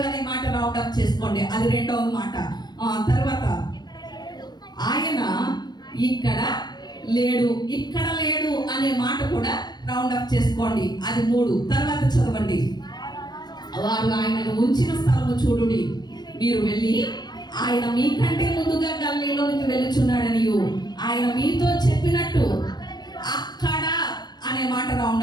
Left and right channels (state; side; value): late; right; 0.20 ms